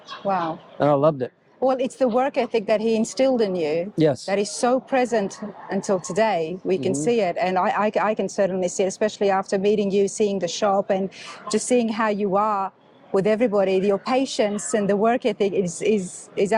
Wow. And I loved it. Well, it's the work ethic that he instilled in you. Yes. That is so present until today. We can see it. And I can certainly see it, especially after meeting you, seeing the shop and just seeing how you are with everybody. Your patience and the work ethic is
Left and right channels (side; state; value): both; identical; correlation 1.00